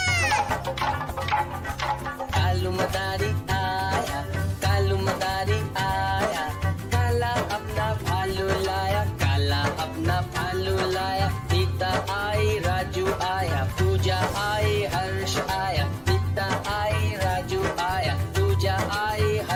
कालू मदारी आया, कालू मदारी आया। काला अपना भालू लाया, काला अपना भालू लाया। सीता आई, राजू आया, पूजा आई, हर्ष आया। सीता आई, राजू आया, पूजा आई,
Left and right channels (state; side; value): identical; both; correlation 1.00